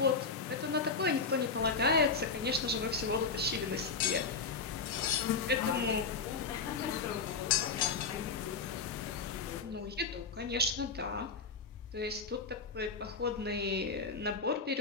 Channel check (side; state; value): right; quieter; 4.7 dB